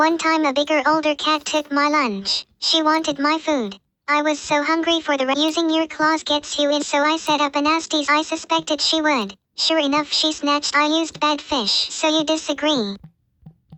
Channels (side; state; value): both; identical; correlation 1.00